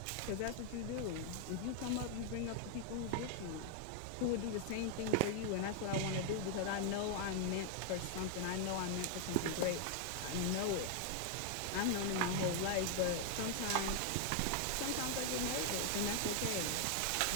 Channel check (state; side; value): different; both; correlation 0.00